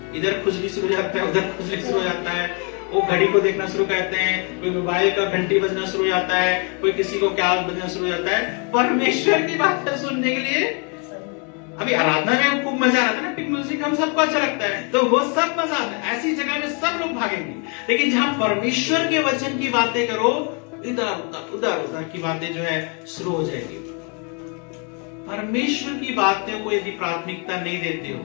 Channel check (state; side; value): quieter; right; 36.3 dB